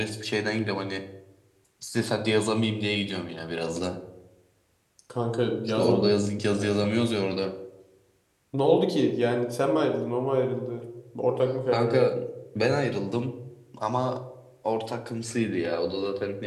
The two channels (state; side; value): identical; both; correlation 1.00